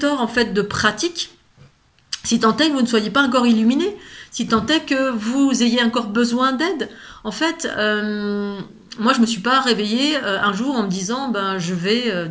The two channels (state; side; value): identical; both; correlation 1.00